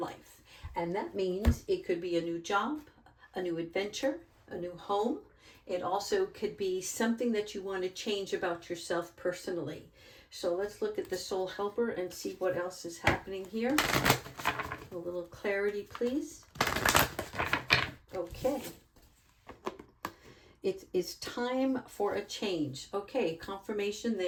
And that means it could be a new job, a new adventure, a new home. It also could be something that you want to change about yourself personally. So let's look at the soul helper and see what else is happening here. A little clarity, please. Okay. It is time for a change. Okay, confirmation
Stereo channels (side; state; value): both; identical; correlation 1.00